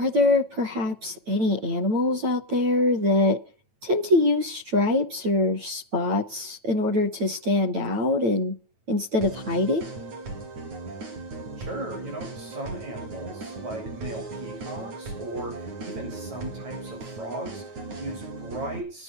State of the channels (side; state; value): left; late; 9.1 ms